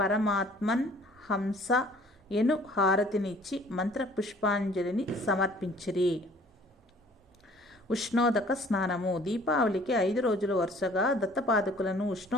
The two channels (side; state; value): both; normal; correlation 0.53